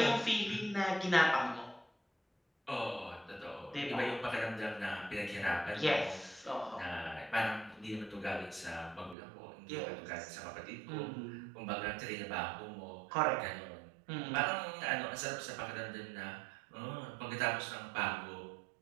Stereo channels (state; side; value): drops out; left; at 9.2 s